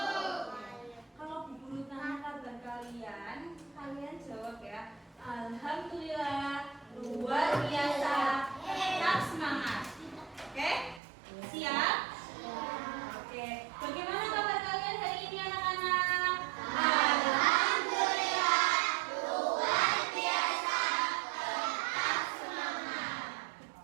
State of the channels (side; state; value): left; drops out; at 11.0 s